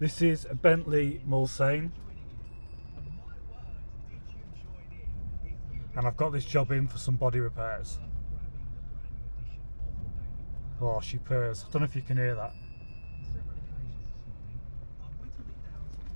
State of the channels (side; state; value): both; inverted; correlation -1.00